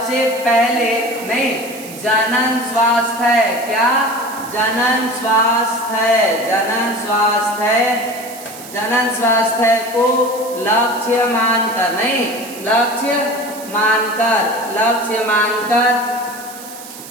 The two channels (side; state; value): right; noise; hiss, 15 dB below the sound